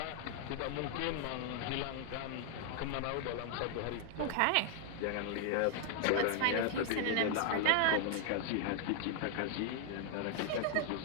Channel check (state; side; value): different; both; correlation 0.00